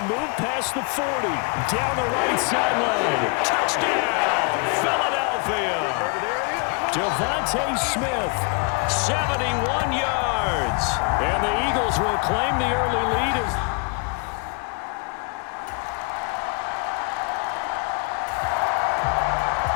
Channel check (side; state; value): right; quieter; 34.4 dB